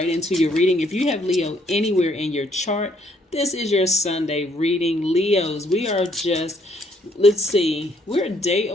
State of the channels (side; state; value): both; normal; correlation 0.68